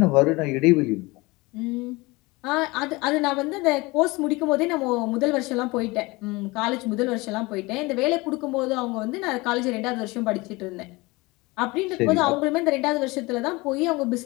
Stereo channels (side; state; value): right; quieter; 23.3 dB